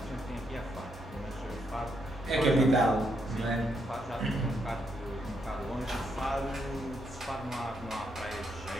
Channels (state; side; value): normal; both; correlation 0.78